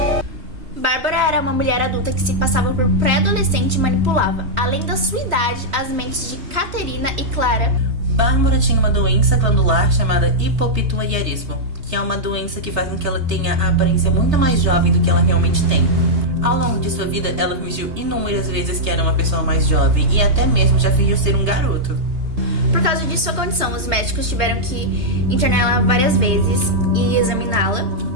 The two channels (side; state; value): left; late; 3.2 ms